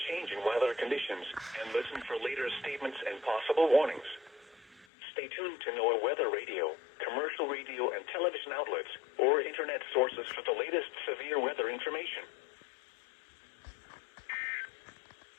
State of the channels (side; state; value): right; drops out; at 4.9 s